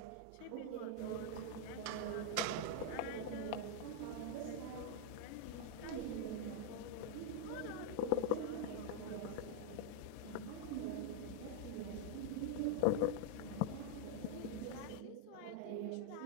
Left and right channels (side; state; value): both; different; correlation 0.01